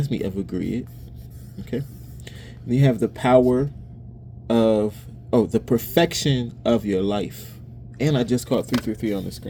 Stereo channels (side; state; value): both; identical; correlation 1.00